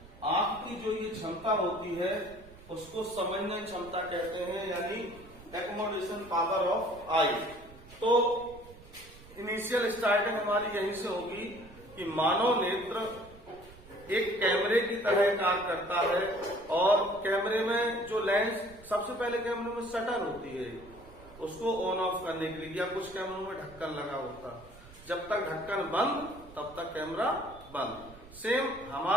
आंख की जो ये क्षमता होती है उसको समझने क्षमता कहते हैं, यानी एकोमोडेशन पावर ऑफ आई। तो इनिशियल स्टार्टिंग हमारी यहीं से होगी कि मानव नेत्र एक कैमरे की तरह काम करता है और कैमरे में जो लेंस, सबसे पहले कैमरे में शटर होती है, उसको ऑन ऑफ करने के लिए, या कुछ कैमरों में ढक्कन लगा होता, जब तक ढक्कन बंद तब तक कैमरा बंद। सेम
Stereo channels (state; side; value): noise; right; rumble, 20 dB below the sound